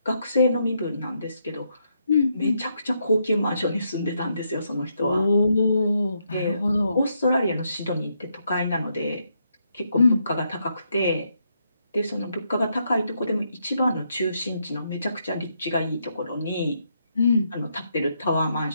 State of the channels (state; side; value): inverted; both; correlation -0.78